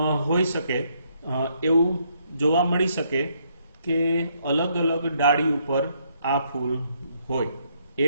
होई शके, एवुं जोवा मळी शके के अलग अलग डाળી ઉપર आ फूल होय,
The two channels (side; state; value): both; inverted; correlation -0.71